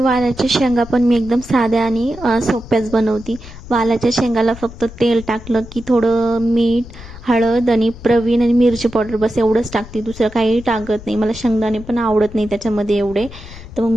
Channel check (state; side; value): noise; left; rumble, 16 dB below the sound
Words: शेंगा पण मी एकदम साध्या आणि सोप्याच बनवते. वालाच्या शेंगाला फक्त तेल टाकलं की थोडं मीठ, हळद आणि प्रवीण आणि मिरची पावडर, बस एवढंच टाकते, दुसरं काही टाकत नाही. मला शेंगदाणे पण आवडत नाही त्याच्यामध्ये एवढे, तर मग